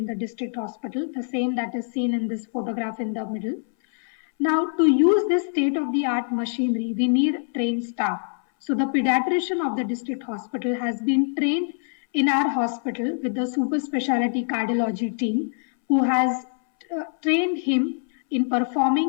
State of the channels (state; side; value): silent; right; 61 dB below the other